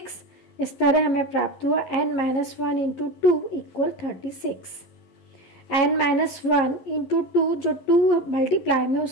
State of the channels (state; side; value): late; right; 11 ms